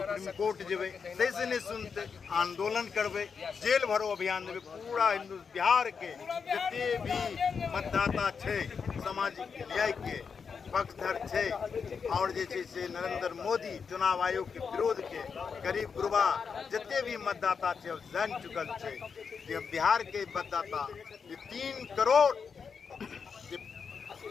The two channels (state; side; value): quieter; right; 5.9 dB